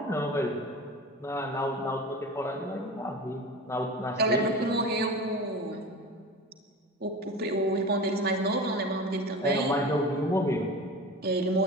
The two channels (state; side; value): normal; both; correlation 0.32